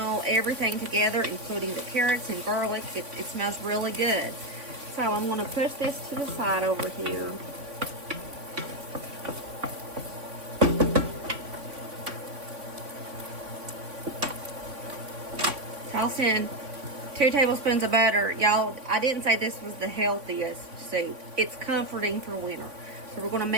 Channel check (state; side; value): late; left; 3.5 ms